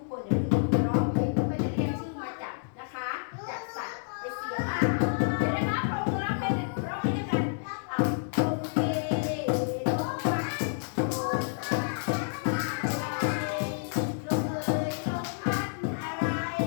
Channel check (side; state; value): right; silent; digital silence